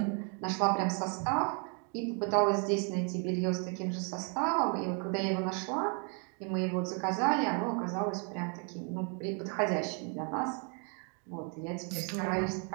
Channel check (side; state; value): left; quieter; 38.4 dB